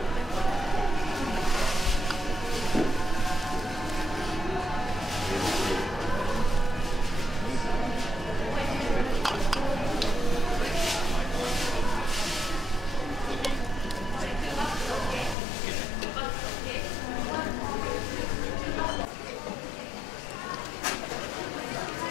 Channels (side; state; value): right; drops out; at 15.4 s